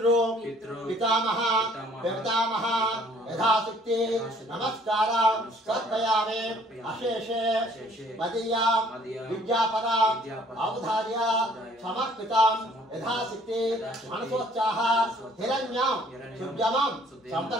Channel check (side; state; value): both; normal; correlation 0.58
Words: పితామహ పితామహ యథాశక్తి నమస్కార సమర్పయామి. అశేషే మదీయా విద్యాపర అవధార్య సమర్పితం యథాశక్తి మనసోత్సాహ హిరణ్యం శుభ్యమం